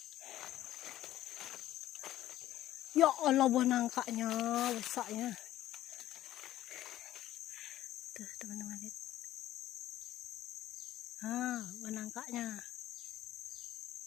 Ya Allah, buah nangkanya besarnya. Tuh teman-teman lihat. Buah nangkanya.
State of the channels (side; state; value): right; quieter; 13.7 dB